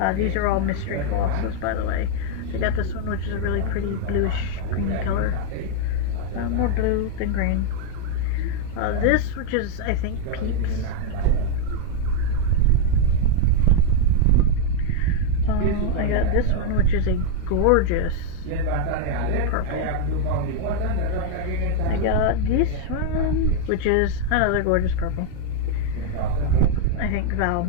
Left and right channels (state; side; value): different; both; correlation 0.00